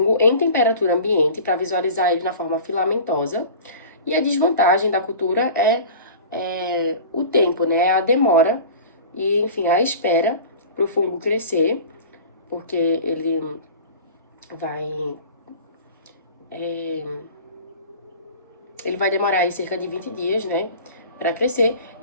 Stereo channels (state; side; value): inverted; both; correlation -0.39